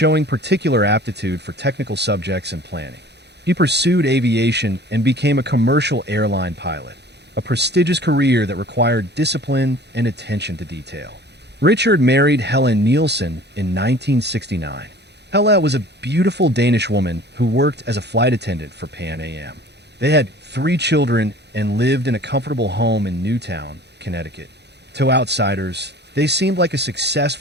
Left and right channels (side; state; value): left; late; 0.49 ms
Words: particular aptitude for technical subjects and planning. He pursued aviation and became a commercial airline pilot, a prestigious career that required discipline and attention to detail. Richard married Helen Nielsen in 1969. Hella was a beautiful Danish woman who worked as a flight attendant for Pan Am. They had 3 children and lived in a comfortable home in Newtown, Connecticut. To outsiders, they seemed like a